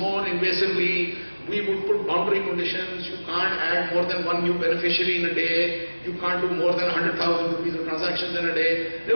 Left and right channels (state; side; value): inverted; both; correlation -1.00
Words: invasively. We would put boundary conditions. You can't add more than one new beneficiary in a day. You can't do more than 100,000 rupees of transactions in a day. There